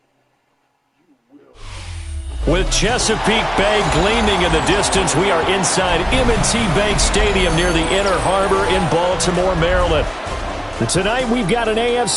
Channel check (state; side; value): identical; both; correlation 1.00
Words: With Chesapeake Bay gleaming in the distance, we are inside M&T Bank Stadium near the Inner Harbor in Baltimore, Maryland. And tonight we've got an